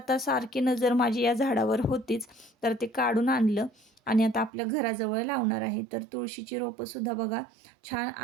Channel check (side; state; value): left; drops out; at 4.5 s